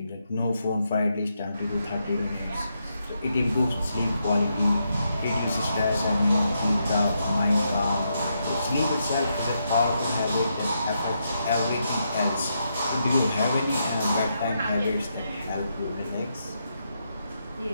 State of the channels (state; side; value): inverted; both; correlation -0.81